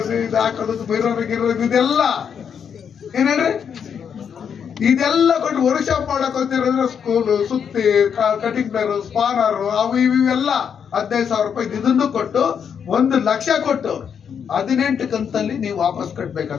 ಇದು ಹಾಕೋದು, ಬಿರೋರು ಗಿರೋದು ಇದೆಲ್ಲ ಏನೇನ್ರಿ ಇದೆಲ್ಲ ಕೊಟ್ಟು ವರ್ಕ್ ಶಾಪ್ ಮಾಡಕ್ ಹೋಗ್ತಿರಂದ್ರೆ ಸ್ಕೂಲು, ಸುತ್ತಿ, ಕಟಿಂಗ್ ಪ್ಲೇರು, ಸ್ಪಾನರು, ಅವು ಇವೆಲ್ಲ 15,000 ರೂಪಾಯಿ ಇದನ್ನು ಕೊಟ್ಟು 1 ಲಕ್ಷ ಕೊಟ್ಟು 18 ಕಂತಲ್ಲಿ ನೀವು ವಾಪಸ್ ಕಟ್ಬೇಕು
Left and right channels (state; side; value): quieter; right; 7.4 dB